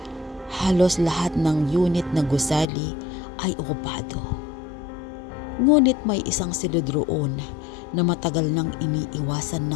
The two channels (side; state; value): right; drops out; at 2.7 s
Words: Halos lahat ng unit na gusali ay okupado. Ngunit may isang silid roon na matagal nang iniiwasan